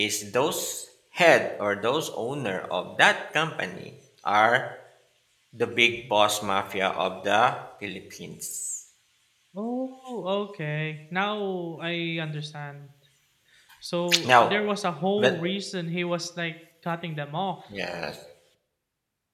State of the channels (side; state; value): both; identical; correlation 1.00